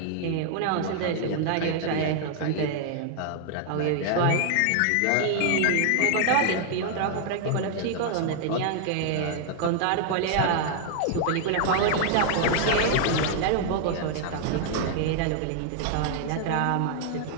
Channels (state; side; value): different; both; correlation 0.00